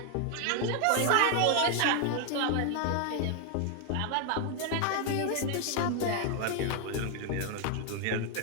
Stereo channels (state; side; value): different; both; correlation 0.00